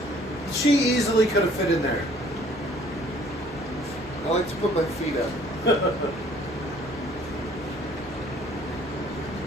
She easily could have fit in there. I like to put my feet up.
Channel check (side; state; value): left; noise; hum, 19 dB below the sound